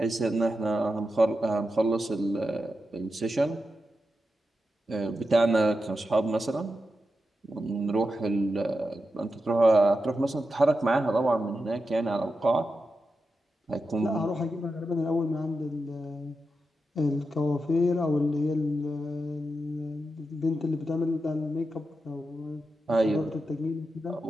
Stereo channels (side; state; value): both; normal; correlation 0.89